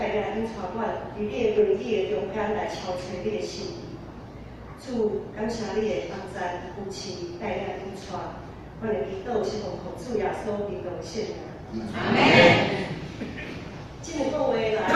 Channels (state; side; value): identical; both; correlation 1.00